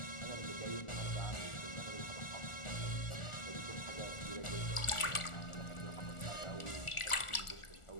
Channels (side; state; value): right; late; 1.4 ms